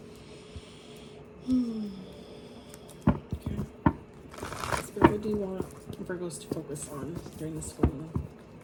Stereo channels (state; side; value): identical; both; correlation 1.00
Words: Okay, Spirit, what do you want Virgos to focus on during this full moon?